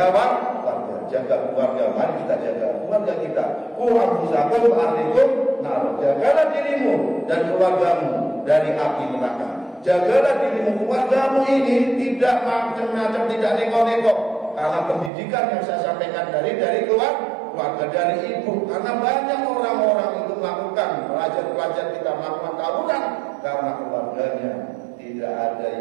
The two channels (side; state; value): left; drops out; at 15.1 s